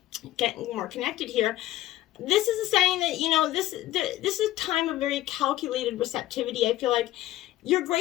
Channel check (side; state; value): right; quieter; 15.0 dB